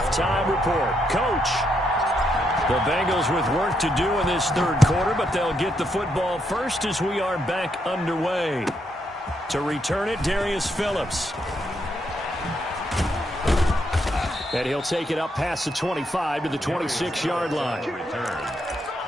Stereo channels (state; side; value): normal; both; correlation 0.78